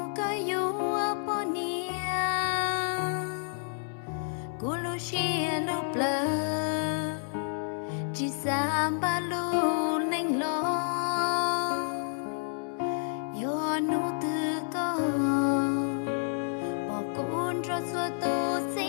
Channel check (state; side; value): silent; right; 58 dB below the other